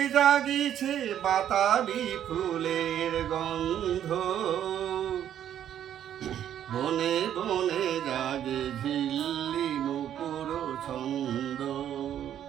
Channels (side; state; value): left; quieter; 10.4 dB